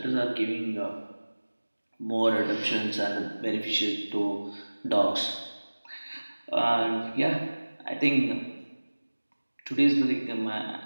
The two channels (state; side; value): inverted; both; correlation -1.00